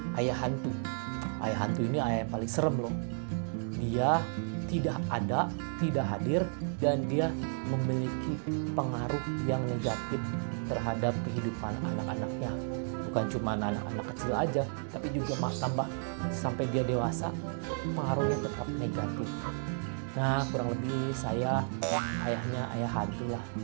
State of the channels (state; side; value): silent; left; 56 dB below the other